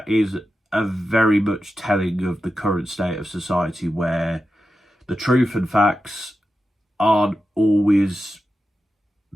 is a very much telling of the current state of society, where the truth and facts aren't always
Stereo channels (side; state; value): both; normal; correlation 0.91